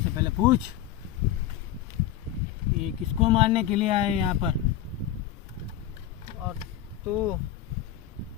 पहले पूछ, ये किसको मारने के लिए आए यहाँ पर? और तू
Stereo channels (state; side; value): quieter; right; 11.6 dB